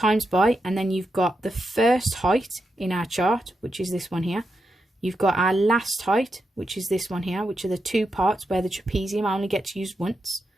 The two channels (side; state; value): both; normal; correlation 0.86